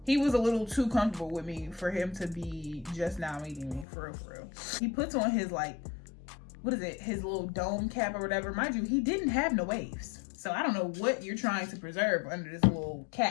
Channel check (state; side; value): drops out; right; at 3.9 s